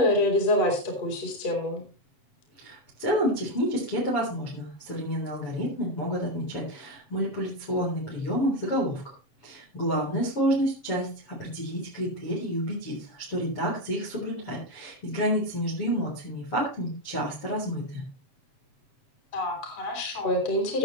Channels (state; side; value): late; right; 7.1 ms